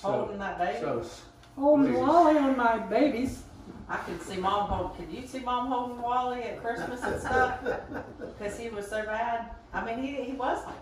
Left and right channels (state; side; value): identical; both; correlation 1.00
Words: Holding that baby? so Holding Please. Wally on my babies. I could see Mom holding. Could you see Mom holding Wally at Christmas and stuff? Because he was so bad. I mean, he was